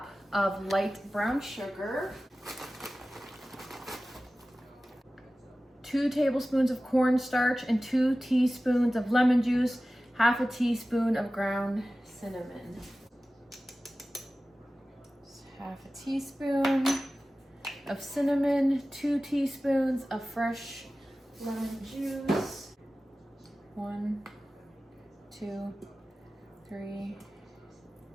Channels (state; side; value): normal; both; correlation 0.96